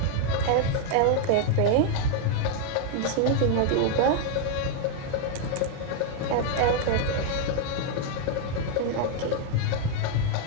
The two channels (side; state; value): both; different; correlation 0.00